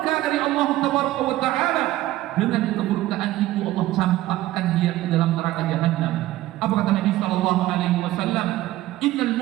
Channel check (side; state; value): left; quieter; 15.7 dB